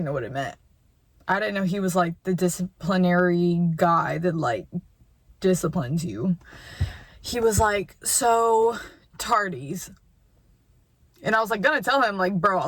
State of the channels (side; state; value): both; identical; correlation 1.00